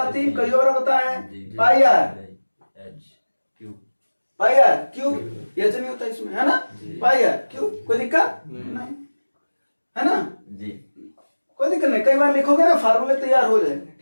कई और बताए पाई आर, पाई आर क्यूब। ये नहीं होता इसमें, है ना? पाई आर क्यूब। कोई दिक्कत नहीं, है ना? कोई दिक्कत नहीं, कई बार लिखोगे ना फार्मूले तैयार हो जाएंगे,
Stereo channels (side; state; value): both; inverted; correlation -1.00